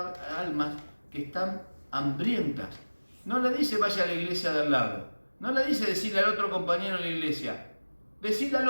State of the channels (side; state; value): both; inverted; correlation -1.00